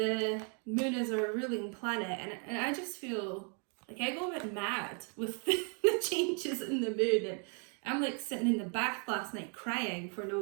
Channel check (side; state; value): left; quieter; 38.7 dB